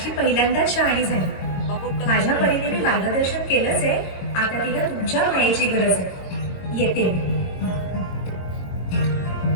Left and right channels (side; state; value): right; late; 22 ms